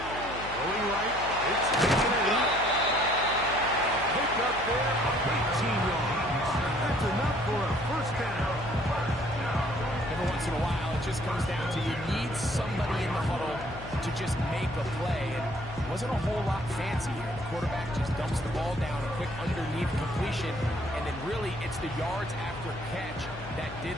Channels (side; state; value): left; noise; hum, 13 dB below the sound